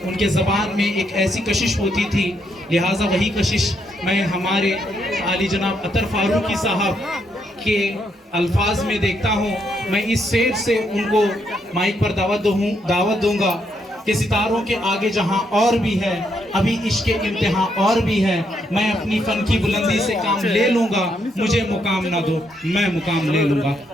उनके ज़बान में एक ऐसी कशिश होती थी, लिहाजा वही कशिश मैं हमारे आली जनाब अतर फारूकी साहब के अल्फाज में देखता हूँ। मैं इस शेर से उनको माइक पर दावत दूंगा कि सितारों के आगे जहाँ और भी है, अभी इश्क इम्तिहान और भी है। मैं अपनी फन की बुलंदी से काम ले लूंगा, मुझे मुकाम ना दो मैं मुकाम ले लूंगा।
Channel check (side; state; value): both; normal; correlation 0.76